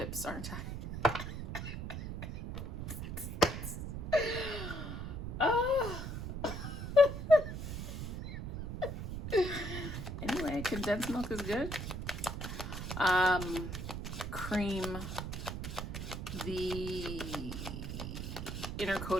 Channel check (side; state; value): right; noise; rumble, 5 dB below the sound